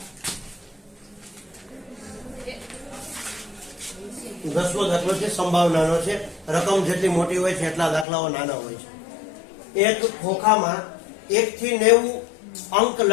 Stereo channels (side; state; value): right; drops out; at 8.1 s